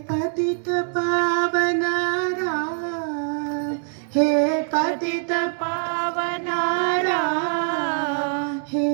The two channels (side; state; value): left; silent; digital silence